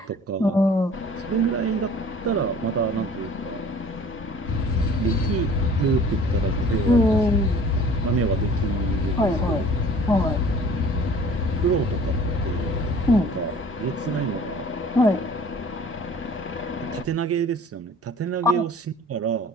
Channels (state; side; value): normal; both; correlation 0.49